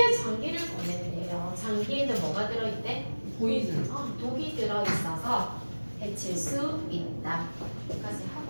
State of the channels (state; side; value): inverted; both; correlation -1.00